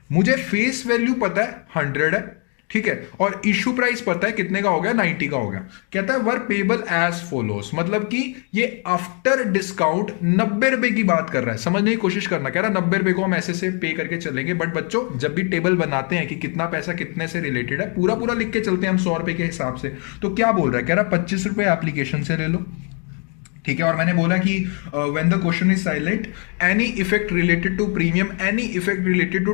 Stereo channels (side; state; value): right; quieter; 38.2 dB